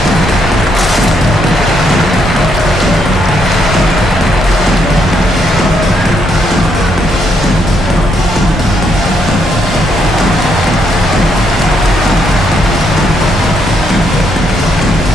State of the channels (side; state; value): both; normal; correlation 0.75